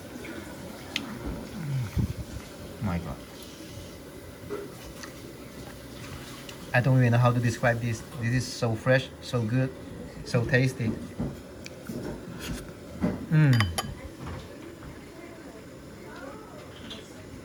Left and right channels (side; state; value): both; identical; correlation 1.00